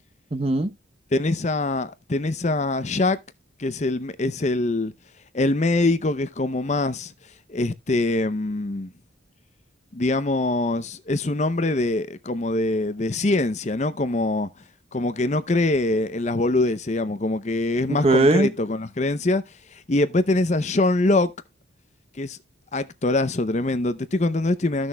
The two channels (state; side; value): normal; both; correlation 0.55